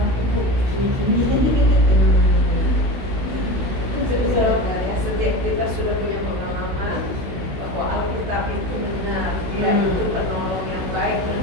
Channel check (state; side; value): late; left; 16 ms